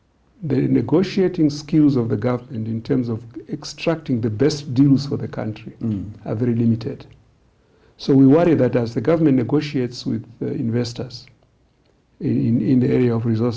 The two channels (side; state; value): both; identical; correlation 1.00